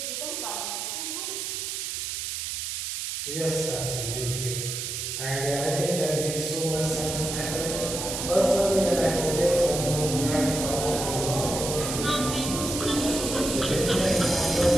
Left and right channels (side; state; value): right; noise; hiss, 4 dB below the sound